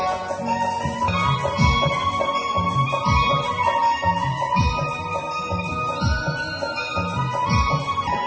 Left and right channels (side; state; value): both; identical; correlation 1.00